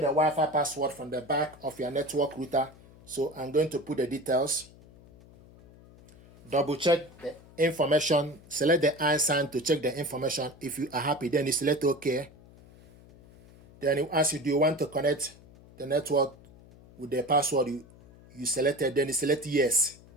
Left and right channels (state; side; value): noise; left; hum, 23 dB below the sound